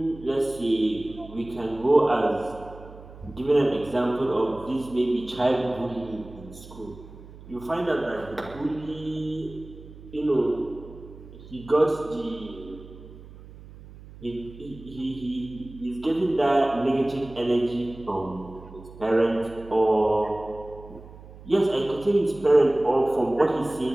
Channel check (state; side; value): noise; right; hum, 18 dB below the sound